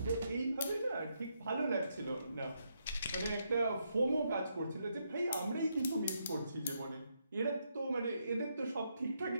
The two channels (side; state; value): both; inverted; correlation -0.79